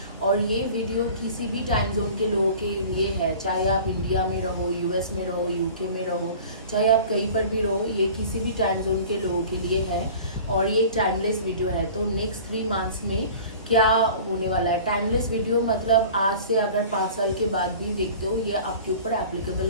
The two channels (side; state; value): both; inverted; correlation -0.42